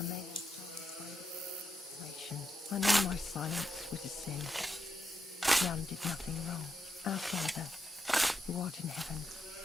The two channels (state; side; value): normal; both; correlation 0.84